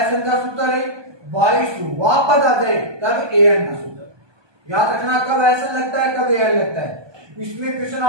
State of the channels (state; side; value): late; left; 1.2 ms